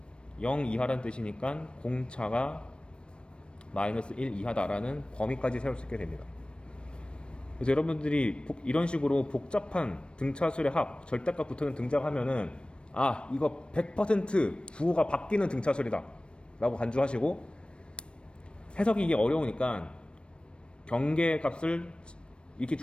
0 이하라는 뜻이니까 공차가 마이너스 1 이하다라는 범위까지 세울 수 있게 됩니다. 그래서 여러분들이 이런 식으로 복잡한 등차수열의 합, 절대값 붙는 등장하면은 이거 100% 부호가 바뀌는 등차수열이다 라고 간주하시고, 해석이 이게 어려우니까 경계값을 이렇게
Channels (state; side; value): late; right; 0.057 ms